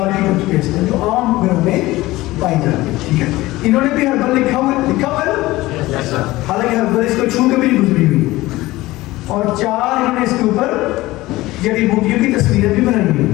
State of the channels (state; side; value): quieter; right; 18.5 dB